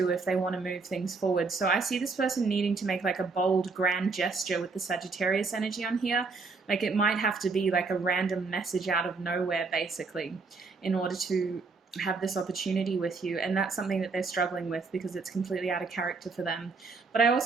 if they want to move things forward. So I see this person needing to make like a bold, grand gesture with the Sagittarius energy on here. Like it might have to be like a random message out of nowhere, basically, in order to have this opportunity with you. And that's something that they're struggling with because it's completely out of character for them. But I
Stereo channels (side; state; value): left; quieter; 4.3 dB